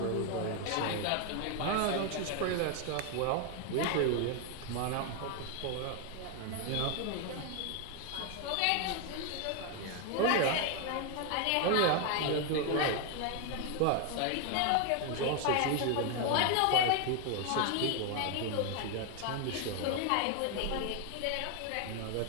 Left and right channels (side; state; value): both; different; correlation 0.01